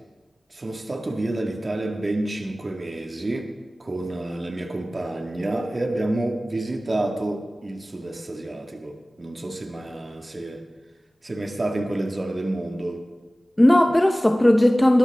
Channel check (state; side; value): normal; both; correlation 0.97